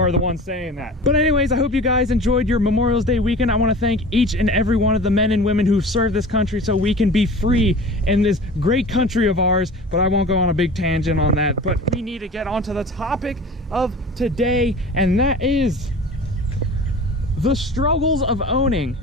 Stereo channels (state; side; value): normal; both; correlation 0.39